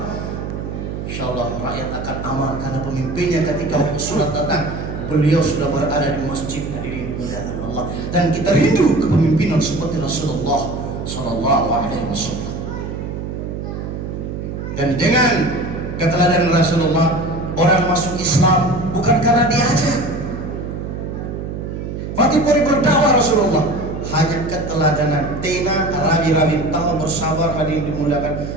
Insyaallah rakyat akan aman karena pemimpinnya ketika sholat datang beliau sudah berada di masjid hadirin dimuliakan Allah. Dan kita rindu kepemimpinan seperti Rasulullah Sallallahu Alaihi Wasallam. Dan dengan keteladanan Rasulullah orang masuk Islam bukan karena diajak. Fatih Puri berdakwah Rasulullah hanya keteladanan tena rabi-rabi tahu bersabar hadirin dimuliakan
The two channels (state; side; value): noise; right; hum, 6 dB below the sound